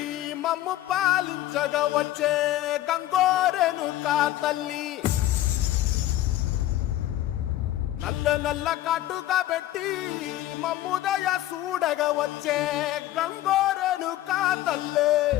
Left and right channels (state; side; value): quieter; right; 14.4 dB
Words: మమ్ము పాలించగా వచ్చే గంగోరెను కా తల్లి, నల్ల నల్ల కాటుగా పెట్టి మమ్ముదయ చూడగా వచ్చే గంగోరెను కా తల్లి,